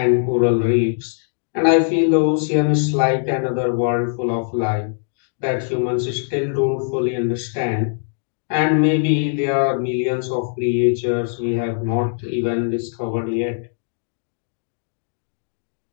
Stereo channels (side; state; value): right; silent; digital silence